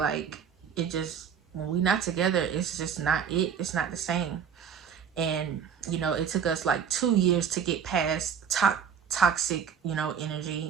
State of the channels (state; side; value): quieter; left; 7.4 dB